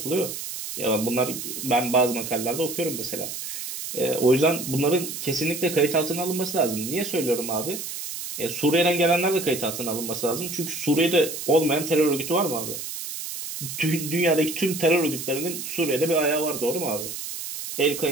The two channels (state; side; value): noise; right; hiss, 7 dB below the sound